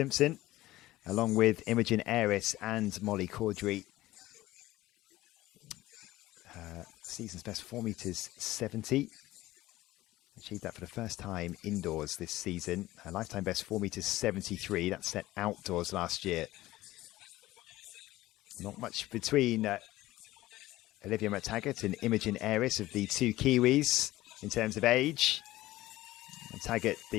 along with Imogen Aris and Molly Caudry. Season's best 4 meters 70. Achieved that for the first time indoors this season. Her lifetime best 4 meters 73. That's set outdoors last year. Not much between Olivia McTaggart and Imogen Aris of the 2 Kiwis in terms of age. McTaggart,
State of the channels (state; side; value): quieter; right; 16.8 dB